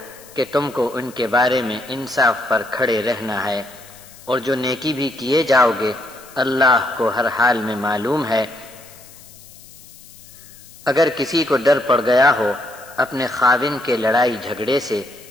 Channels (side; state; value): left; noise; hiss, 21 dB below the sound